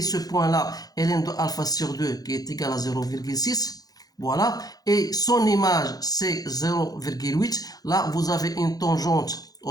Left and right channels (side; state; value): right; late; 0.18 ms